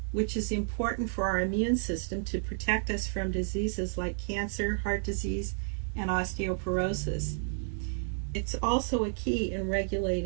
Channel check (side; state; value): left; silent; digital silence